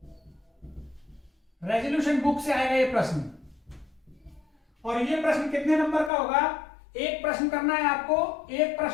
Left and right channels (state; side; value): drops out; right; at 6.1 s